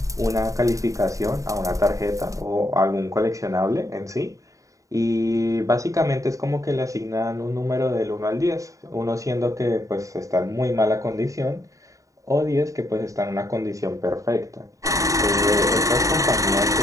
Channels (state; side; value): late; left; 0.16 ms